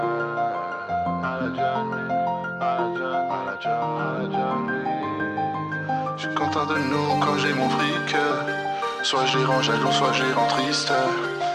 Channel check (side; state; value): both; identical; correlation 1.00